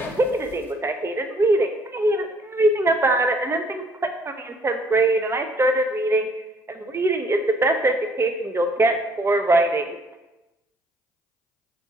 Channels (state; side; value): normal; both; correlation 0.62